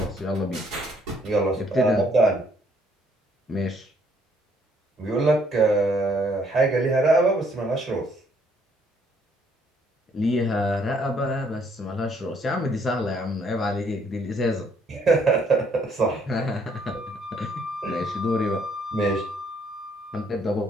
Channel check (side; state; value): both; normal; correlation 0.66